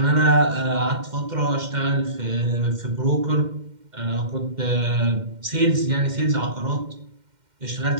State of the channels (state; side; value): late; left; 2.1 ms